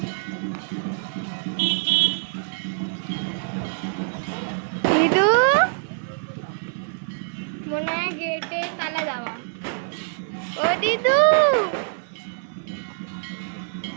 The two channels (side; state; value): left; silent; 58 dB below the other